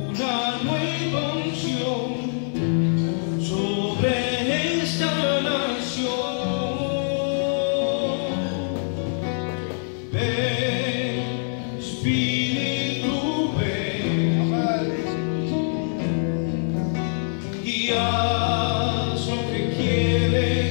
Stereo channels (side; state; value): right; silent; digital silence